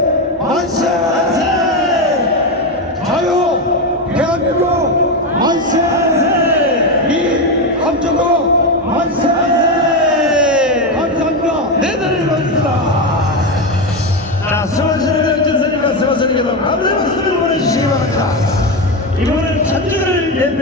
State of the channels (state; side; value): normal; both; correlation 0.13